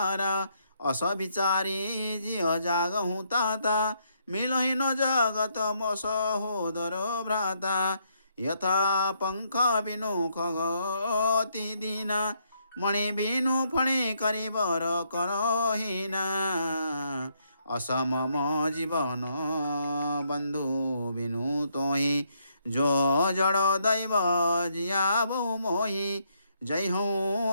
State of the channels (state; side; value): inverted; both; correlation -0.74